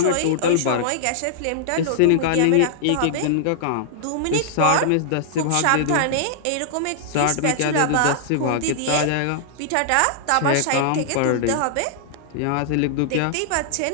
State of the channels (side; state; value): both; different; correlation -0.01